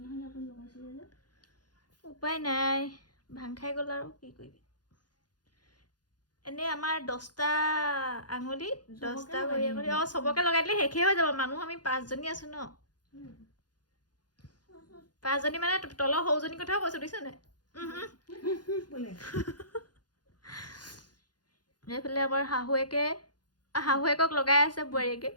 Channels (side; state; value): right; late; 0.69 ms